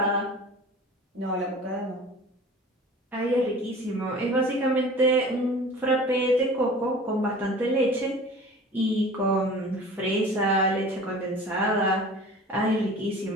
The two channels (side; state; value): both; normal; correlation 0.42